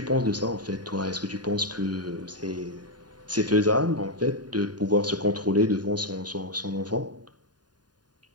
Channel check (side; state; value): left; late; 0.70 ms